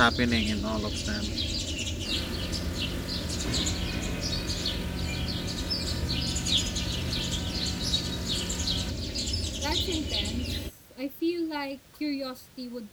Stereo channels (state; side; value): identical; both; correlation 1.00